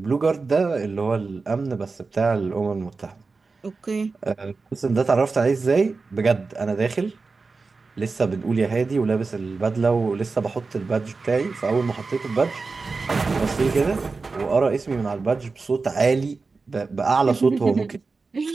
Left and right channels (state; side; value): quieter; left; 4.2 dB